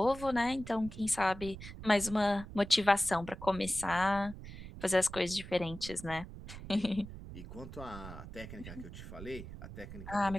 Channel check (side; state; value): right; noise; rumble, 12 dB below the sound